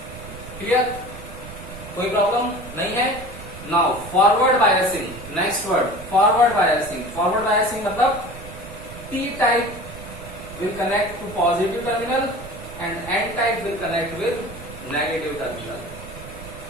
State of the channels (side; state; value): right; noise; rumble, 14 dB below the sound